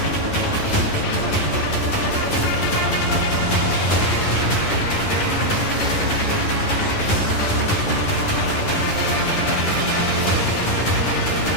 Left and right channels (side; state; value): right; late; 10 ms